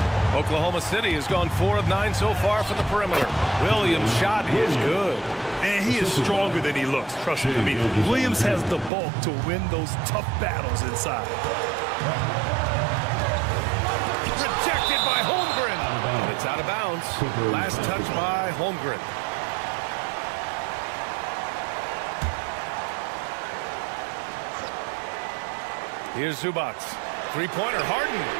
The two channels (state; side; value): drops out; left; at 8.9 s